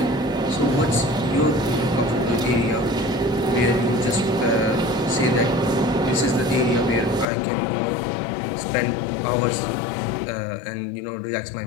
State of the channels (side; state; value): right; drops out; at 7.2 s